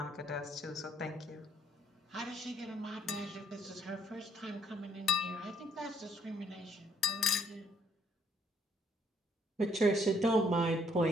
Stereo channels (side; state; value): both; normal; correlation 0.68